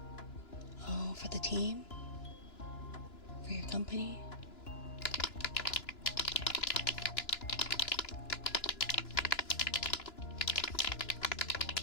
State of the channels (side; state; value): right; late; 2.9 ms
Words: Oh, for the team? For your company?